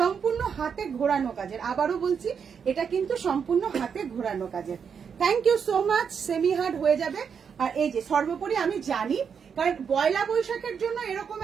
হাতে ঘোরানো কাজের। আবারও বলছি, এটা কিন্তু সম্পূর্ণ হাতে ঘোরানো কাজের। Thank you so much. Semi hard হয়ে যাবে। আর এই যে সর্বোপরি আমি জানি, কারণ পয়লা বৈশাখের জন্য এরকম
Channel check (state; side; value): quieter; left; 6.8 dB